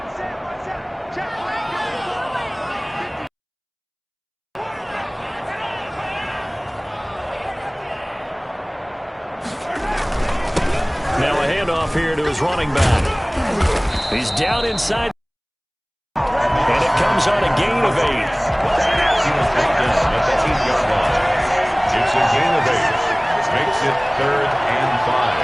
his running back. He's down inside. And it comes on a gain of 8. He was brought down at the 8-yard line. It's a gain of 8. Makes it 3rd and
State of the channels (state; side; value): identical; both; correlation 1.00